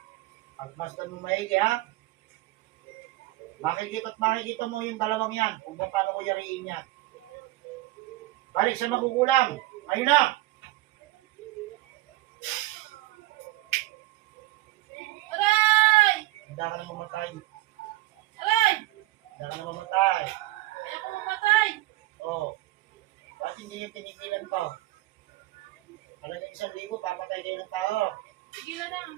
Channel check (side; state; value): left; quieter; 17.9 dB